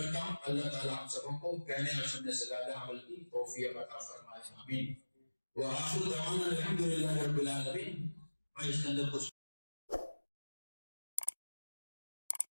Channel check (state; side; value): inverted; both; correlation -1.00